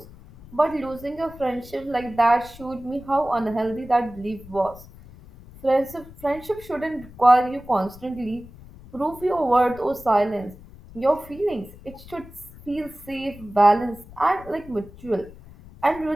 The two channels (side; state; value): left; noise; rumble, 19 dB below the sound